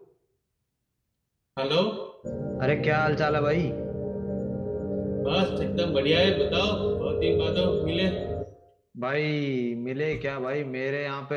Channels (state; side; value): identical; both; correlation 1.00